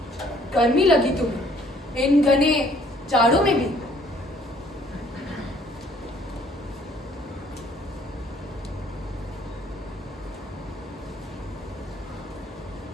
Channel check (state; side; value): normal; both; correlation 0.60